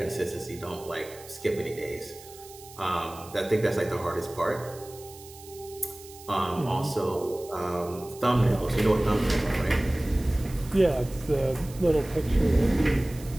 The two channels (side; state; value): right; noise; hiss, 19 dB below the sound